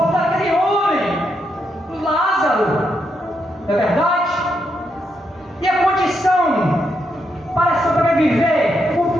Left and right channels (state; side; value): normal; both; correlation 0.80